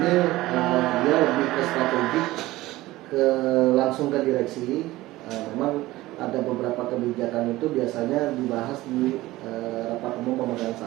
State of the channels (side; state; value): left; quieter; 17.9 dB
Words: dia lebih ke strategi, langsung ke direksi. Memang ada beberapa kebijakan itu biasanya dibahas di rapat umum pemegang